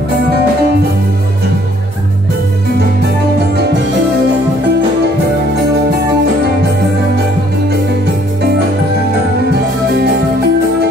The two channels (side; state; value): both; normal; correlation 0.62